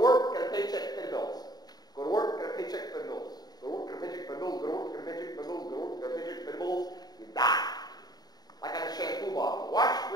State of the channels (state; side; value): late; right; 0.19 ms